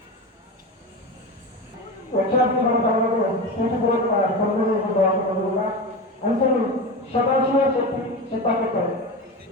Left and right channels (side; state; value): both; normal; correlation 0.23